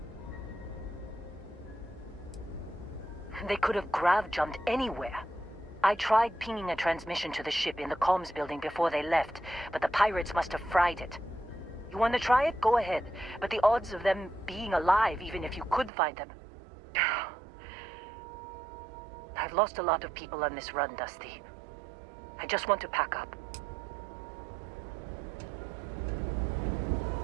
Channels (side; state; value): left; drops out; at 15.9 s